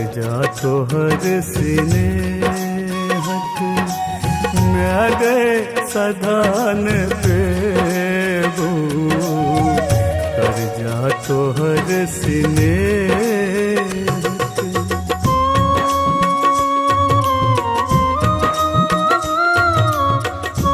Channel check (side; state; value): both; identical; correlation 1.00